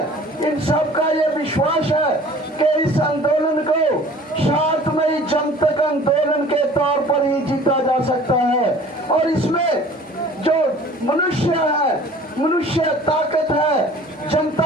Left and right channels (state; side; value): normal; both; correlation 0.48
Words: इन सब का ये विश्वास है कि इस आंदोलन को शांतमयी जनतक आंदोलन के तौर पर ही जीता जा सकता है। और इसमें जो मनुष्य है, मनुष्य ताकत है,